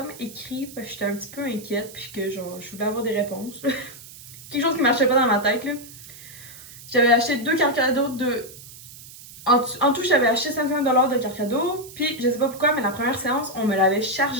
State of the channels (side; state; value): right; noise; hiss, 17 dB below the sound